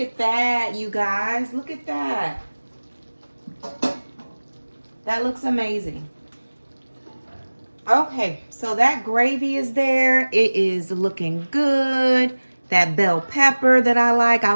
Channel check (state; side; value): inverted; both; correlation -1.00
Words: at that, you guys. Look at that. That looks amazing. Okay, so that gravy is there. It is looking good. That bell pepper that I